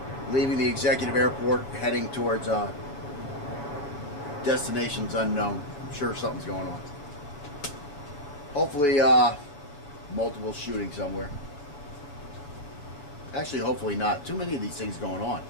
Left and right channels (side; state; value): right; late; 6.9 ms